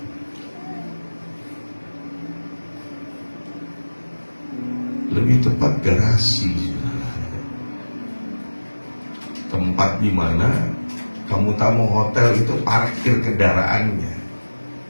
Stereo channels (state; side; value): inverted; both; correlation -1.00